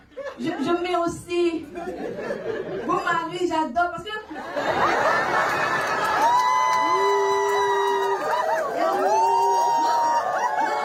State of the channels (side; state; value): both; identical; correlation 1.00